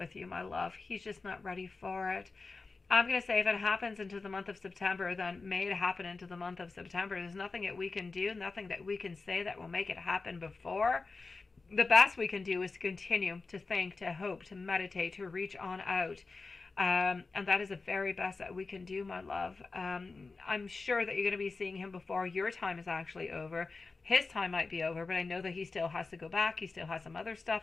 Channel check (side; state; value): right; quieter; 4.0 dB